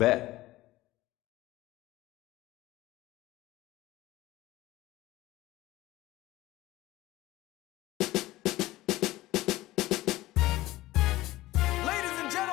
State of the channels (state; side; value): quieter; right; 17.5 dB